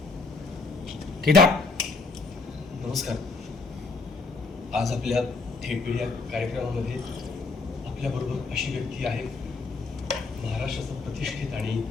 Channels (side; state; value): right; quieter; 4.0 dB